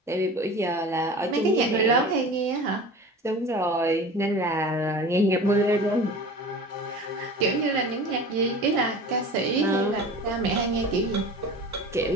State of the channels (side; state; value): both; normal; correlation 0.37